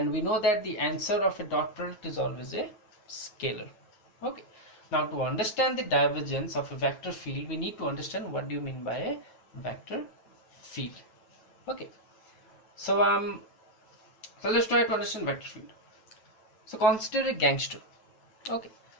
we know that the answer of a dot product is always a scalar. Okay, now to understand the divergence of a vector field we need to understand what do you mean by a vector field. Okay, so let's try to understand vector field. So consider a gangster. Okay,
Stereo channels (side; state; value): right; late; 9.2 ms